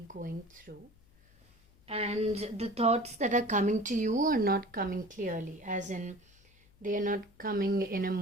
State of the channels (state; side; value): noise; left; hum, 29 dB below the sound